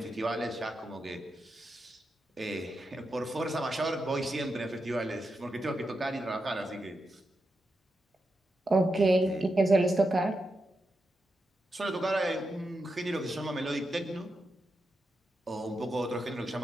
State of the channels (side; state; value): both; normal; correlation 0.87